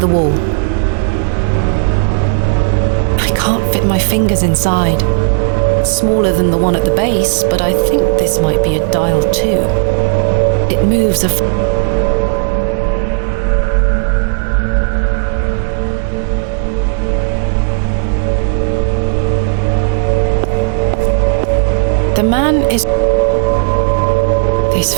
wall. I can't fit my fingers inside. Smaller than the one at the base, but I think this might be a dial too. It moves a... The man is... This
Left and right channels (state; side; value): silent; left; digital silence